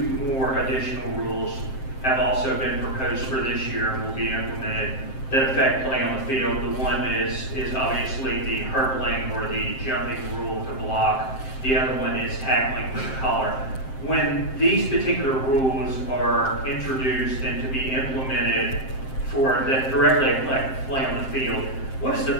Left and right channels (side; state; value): right; late; 7.6 ms